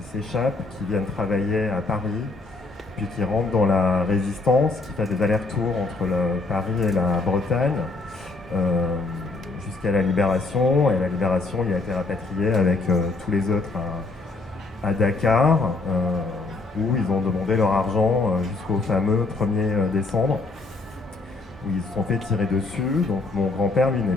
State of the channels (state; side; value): quieter; right; 3.5 dB